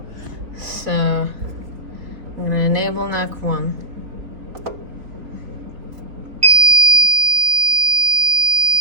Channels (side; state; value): left; late; 3.8 ms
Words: So I'm gonna enable NAC 1.